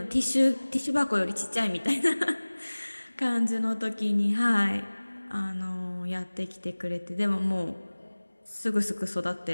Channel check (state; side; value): inverted; both; correlation -1.00